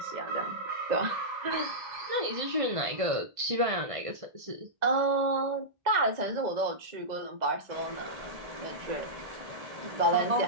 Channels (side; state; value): left; late; 1.5 ms